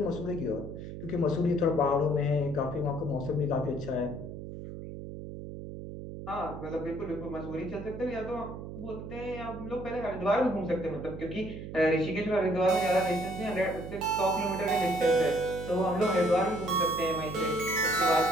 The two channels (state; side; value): noise; right; hum, 9 dB below the sound